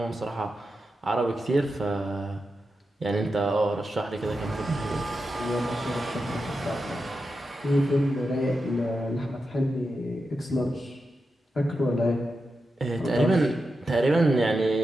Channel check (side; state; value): both; normal; correlation 0.89